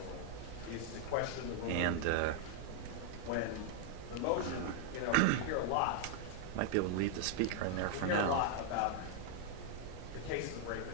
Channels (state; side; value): different; both; correlation 0.00